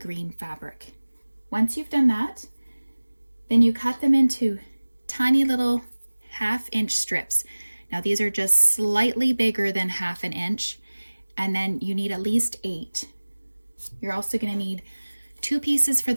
fabric. Once you've done that, then you cut them into tiny little 1/2 inch strips. Now these are just slightly bigger than 1/2 inch, and then you need at least 8. You're also going to need 2 pieces for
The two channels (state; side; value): inverted; both; correlation -1.00